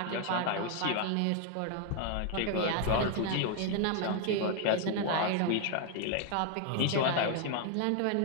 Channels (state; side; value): different; both; correlation 0.00